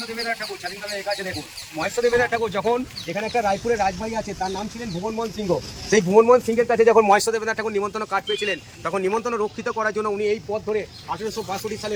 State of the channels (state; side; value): identical; both; correlation 1.00